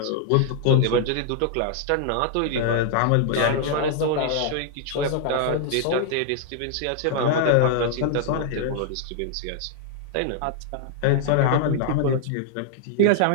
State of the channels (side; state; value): both; different; correlation -0.01